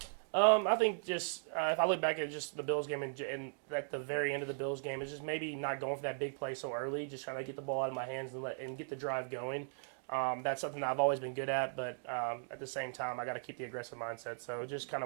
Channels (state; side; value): silent; left; digital silence